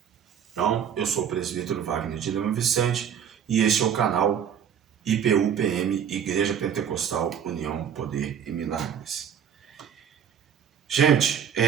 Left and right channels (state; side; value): quieter; left; 8.4 dB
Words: Então, eu sou o presbítero Wagner de Lima Vicente e este é o canal IPU-PM, Igreja Pentecostal União, Poder e Milagres. Gente,